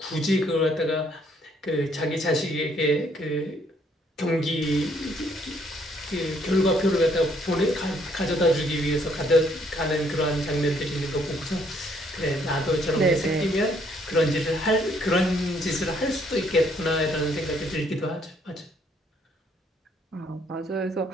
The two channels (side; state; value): both; normal; correlation 0.67